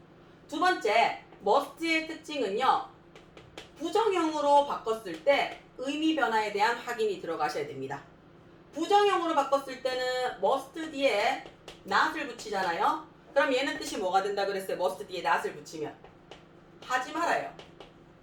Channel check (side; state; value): both; identical; correlation 1.00